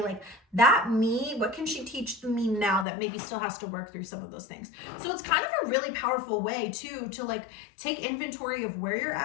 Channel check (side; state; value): right; drops out; at 2.9 s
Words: Like that me, what can she teach the me now that maybe still has to work through some of those things? So it's kind of a really powerful way too, to like take inventory of where you're